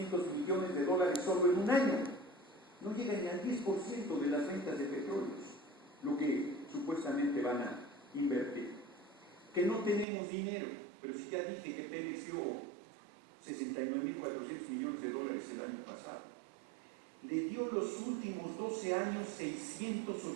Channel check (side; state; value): left; drops out; at 10.1 s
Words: millones de dólares solo en un año. No llega ni al 10% de las ventas de petróleos, lo que supuestamente van a invertir. Que no tenemos dinero, pero si ya dije que Pemex dio 69,400 millones de dólares el año pasado. Le dio los últimos 12 años